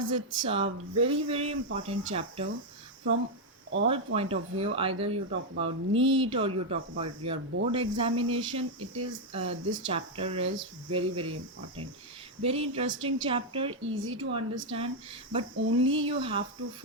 it's a very important chapter from all point of view. Either you talk about NEET or you talk about your board examination. It is this chapter is very important. Very interesting chapter, easy to understand, but only you have to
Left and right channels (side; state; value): both; normal; correlation 0.00